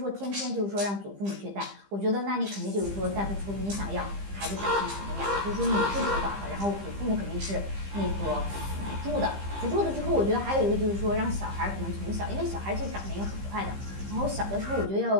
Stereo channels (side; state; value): left; late; 15 ms